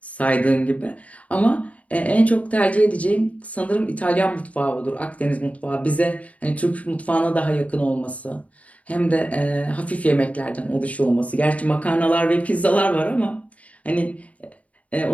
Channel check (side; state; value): right; late; 0.068 ms